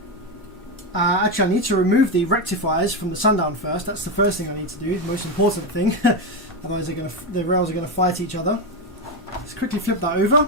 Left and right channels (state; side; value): normal; both; correlation 0.11